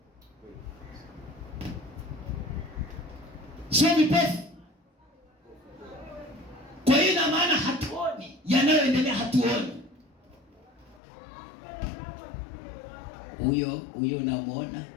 sio vipofu. Kwa hiyo na maana hatuoni yanayoendelea, hatuoni. Huyo unamuona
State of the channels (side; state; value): right; drops out; at 11.0 s